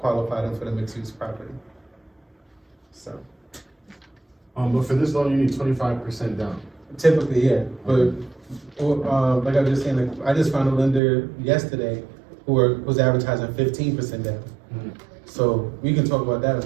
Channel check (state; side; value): drops out; left; at 11.0 s